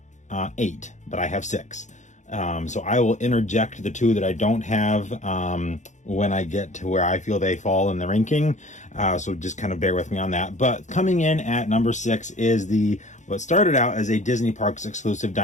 8, but I have 6. So I will interject the 2 that I don't have when I get to where I feel they fall in the ranking. So just kind of bear with me on that. But coming in at number 6 is what started out as a Disney Parks exclusive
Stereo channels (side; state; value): right; late; 0.35 ms